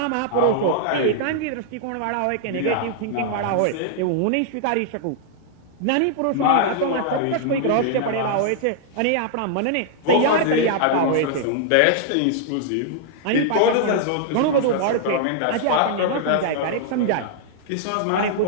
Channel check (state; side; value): different; both; correlation -0.01